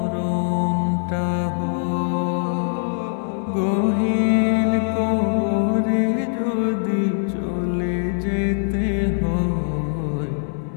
হয়। গহীন কবরে যদি চলে যেতে হয়,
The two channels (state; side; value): silent; right; digital silence